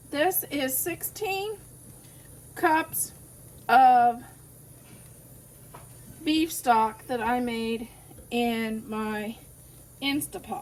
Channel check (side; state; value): both; identical; correlation 1.00